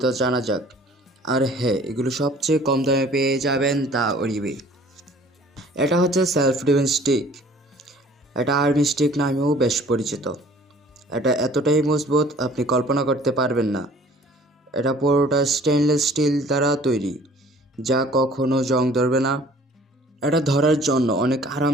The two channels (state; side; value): normal; both; correlation 0.52